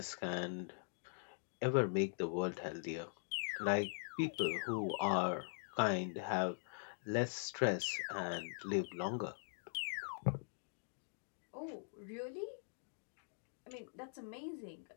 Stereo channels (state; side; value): silent; right; digital silence